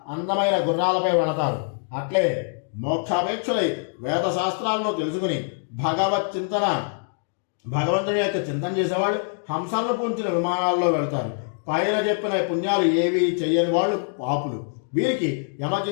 అందమైన గుర్రాలపై వెళతారు. అట్లే మోక్షాపేక్షులై వేద శాస్త్రాలను తెలుసుకుని భగవత్ చింతన భగవంతుని యొక్క చింతన చేసేవాళ్ళు హంసలను పూంచిన విమానాల్లో వెళ్తారు. పైన చెప్పిన పుణ్యాలు ఏవి చెయ్యని వాళ్ళు పాపులు. వీరికి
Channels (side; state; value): right; silent; digital silence